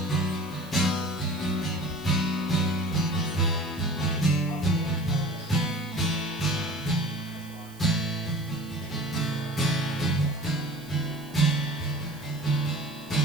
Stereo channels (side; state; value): right; noise; hiss, 21 dB below the sound